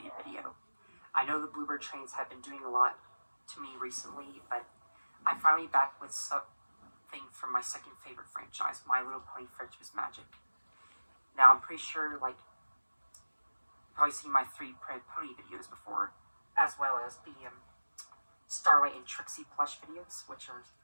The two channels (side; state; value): both; inverted; correlation -1.00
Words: video. I know the Bluebird trains have been doing a lot to me recently, but I'm finally back with something from my second favorite franchise, My Little Pony Friendship is Magic. Now, I'm pretty sure, you've probably seen my 3 Printed Pony videos before, as well as the Starlight and Trixie plush videos, which are